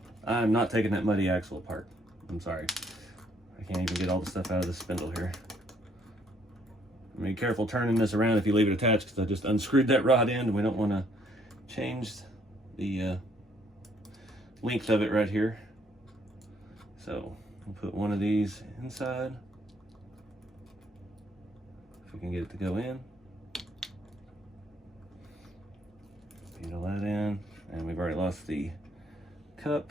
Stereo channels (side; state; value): both; normal; correlation 0.66